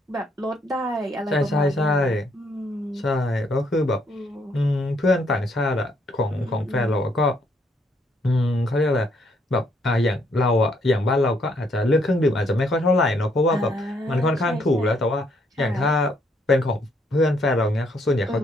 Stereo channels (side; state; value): both; normal; correlation 0.71